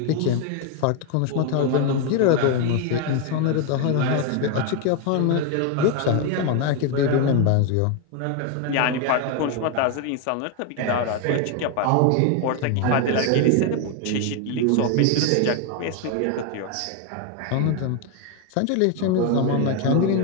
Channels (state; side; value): different; both; correlation 0.01